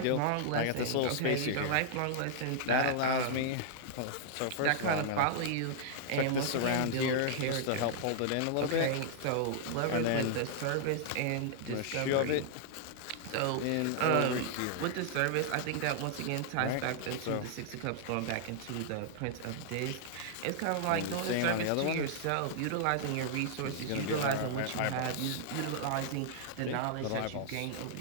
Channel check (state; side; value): different; both; correlation -0.01